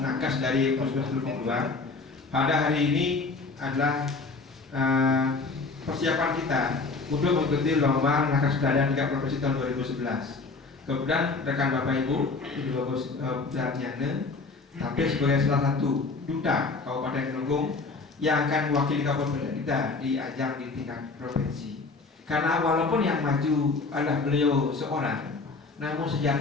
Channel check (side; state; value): right; quieter; 4.0 dB